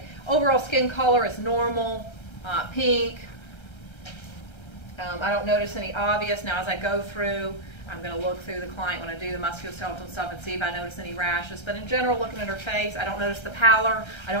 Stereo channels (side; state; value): right; late; 1.3 ms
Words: Overall skin color is normal, pink. I don't notice any obvious. Now as I go through, I'm going to look through the client when I do the musculoskeletal stuff and see if I notice any rashes. But in general, looking at her face, I don't notice the pallor. I